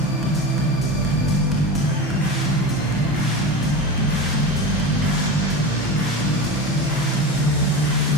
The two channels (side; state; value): both; normal; correlation 0.26